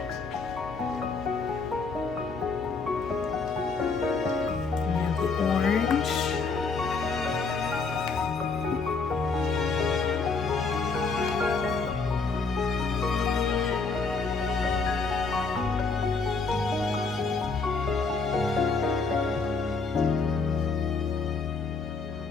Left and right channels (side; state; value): right; quieter; 4.4 dB